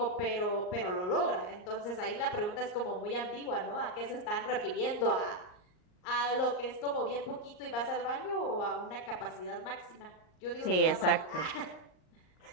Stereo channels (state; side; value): late; right; 38 ms